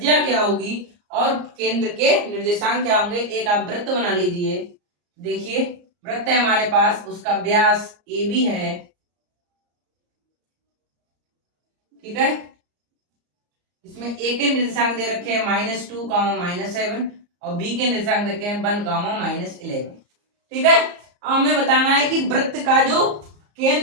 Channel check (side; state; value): left; late; 34 ms